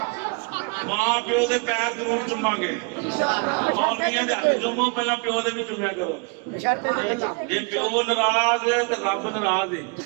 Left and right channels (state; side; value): quieter; left; 33.1 dB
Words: ماں پیو دے پیر ضرور چوما گے، مولویاں دے ہاتھ چومو، پہلا پیو دے بھی چومیا کرو۔ جے پیو ناراض ہے تے رب ناراض ہے۔